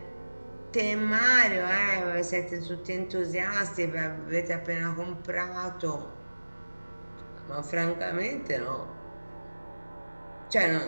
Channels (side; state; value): both; inverted; correlation -1.00